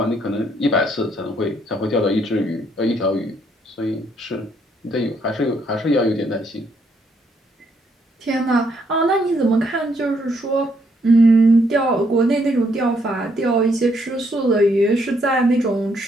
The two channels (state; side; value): normal; both; correlation 0.72